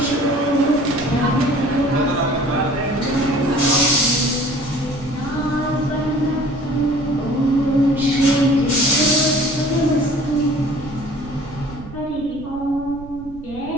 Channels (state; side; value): noise; right; rumble, 17 dB below the sound